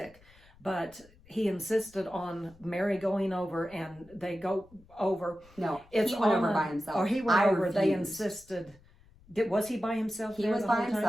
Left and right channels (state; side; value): noise; left; rumble, 26 dB below the sound